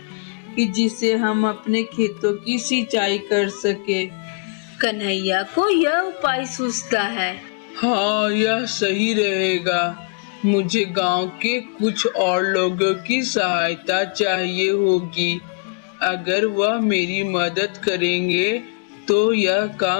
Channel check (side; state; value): right; quieter; 37.0 dB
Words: कि जिसे हम अपने खेतों की सिंचाई कर सके। कन्हैया को यह उपाय सूझता है। हाँ, यह सही रहेगा। मुझे गांव के कुछ और लोगों की सहायता चाहिए होगी। अगर वह मेरी मदद करेंगे तो यह